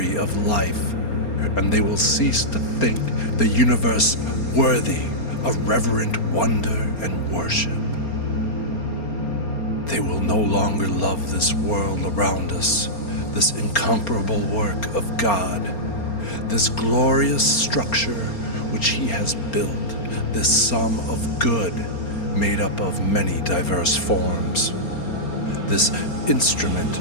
of life, and they will cease to think the universe worthy of reverent wonder and worship. They will no longer love this world around us, this incomparable work of God, this glorious structure which He has built, this sum of good made up of many diverse forms, this instrument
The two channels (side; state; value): right; late; 4.3 ms